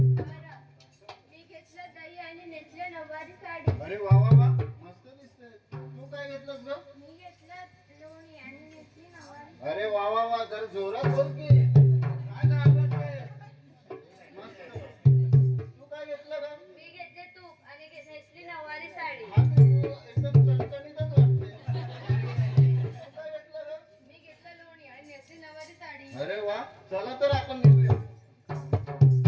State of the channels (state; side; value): identical; both; correlation 1.00